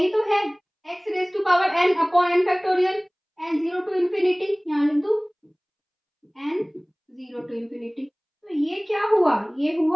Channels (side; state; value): both; identical; correlation 1.00